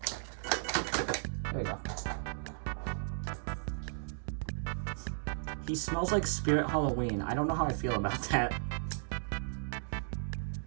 There we go. He smells like Spirit Halloween. I don't know how I feel about that.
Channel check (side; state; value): left; silent; digital silence